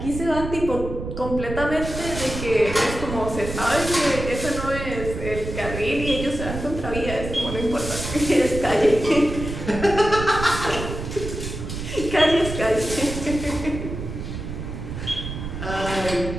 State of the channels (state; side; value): noise; right; rumble, 7 dB below the sound